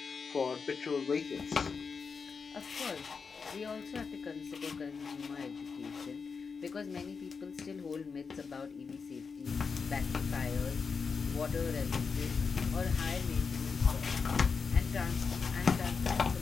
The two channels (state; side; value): quieter; right; 5.3 dB